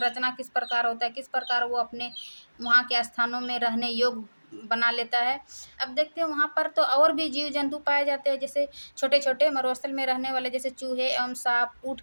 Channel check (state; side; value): inverted; both; correlation -1.00